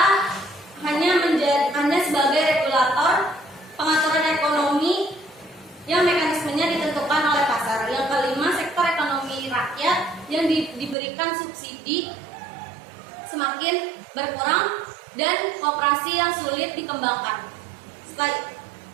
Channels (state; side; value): drops out; left; at 11.0 s